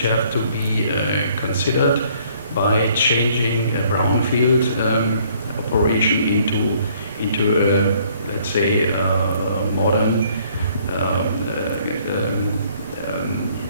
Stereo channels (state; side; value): inverted; both; correlation -0.62